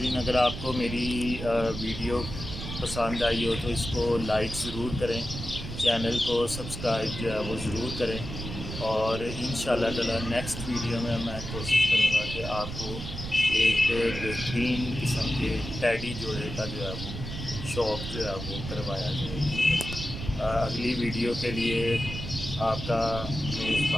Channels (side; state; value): right; noise; rumble, 8 dB below the sound